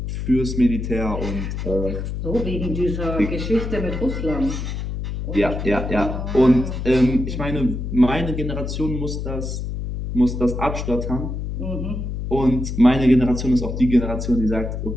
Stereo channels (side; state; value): left; noise; hum, 4 dB below the sound